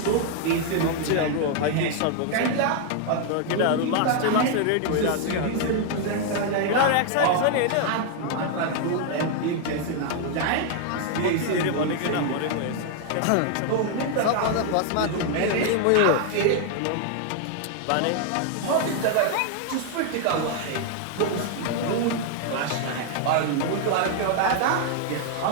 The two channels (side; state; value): both; different; correlation 0.00